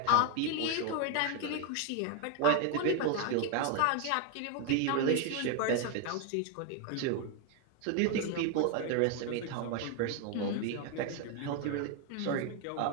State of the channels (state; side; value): different; both; correlation 0.01